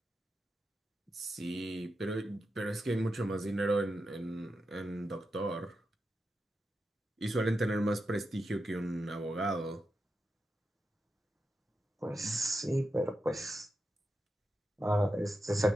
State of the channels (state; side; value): normal; both; correlation 0.88